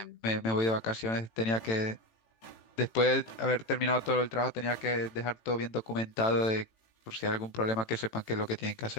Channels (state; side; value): late; right; 18 ms